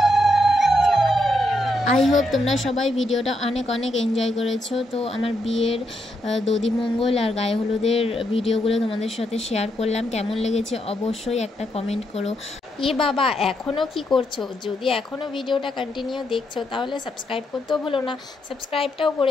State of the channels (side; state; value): both; normal; correlation 0.80